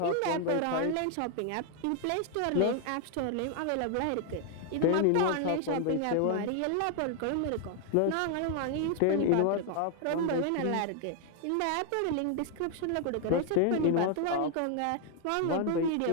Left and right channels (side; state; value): both; different; correlation 0.00